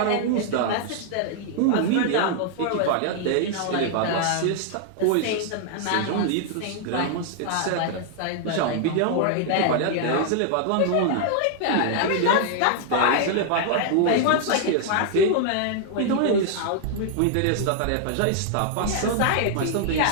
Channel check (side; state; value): both; different; correlation -0.01